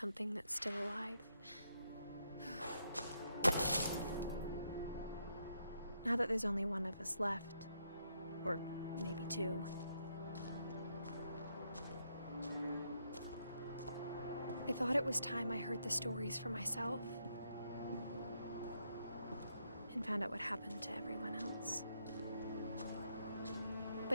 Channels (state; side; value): inverted; both; correlation -0.77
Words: that's still alive. Now that there's only one of us left, or maybe 2. I thought it was time I heard the stories for myself and found out what happened to everyone else.